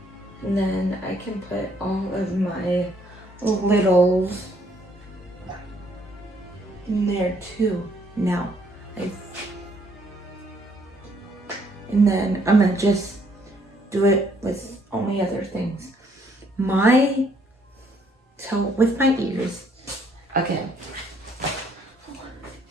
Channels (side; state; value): both; normal; correlation 0.67